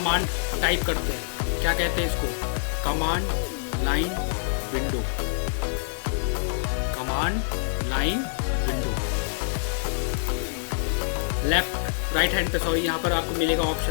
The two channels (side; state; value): right; silent; digital silence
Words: टाइप करते हैं, क्या कहते हैं इसको, command line window. Command line window. Left right hand पे सॉरी यहाँ पर आपको मिलेगा